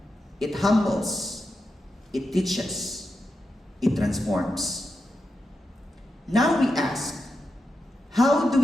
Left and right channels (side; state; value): both; normal; correlation 0.88